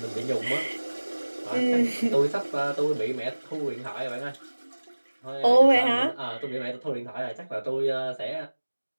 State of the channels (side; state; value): both; inverted; correlation -1.00